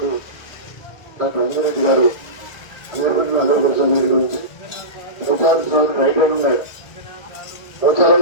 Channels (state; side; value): late; right; 1.6 ms